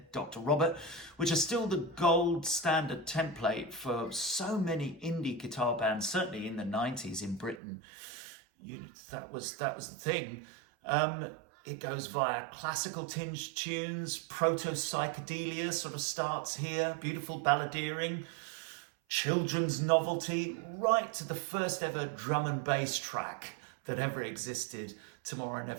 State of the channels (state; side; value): drops out; left; at 7.6 s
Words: Dr. Robert, which are still the gold standard template for so many indie guitar bands, certainly in the 90s in Britain. That was the thing. It goes via classical tinged tunes, proto-psychedelia sort of starts here, beautiful balladeering, children's novelty, right to the first ever drum and bass track that ever existed, Tomorrow